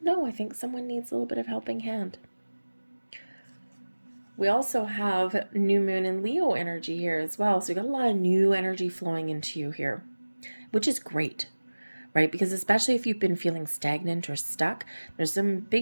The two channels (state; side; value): inverted; both; correlation -1.00